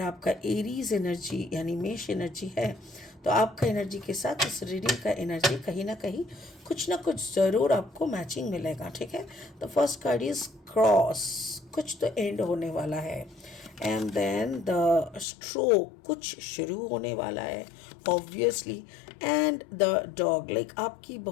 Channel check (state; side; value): drops out; right; at 15.2 s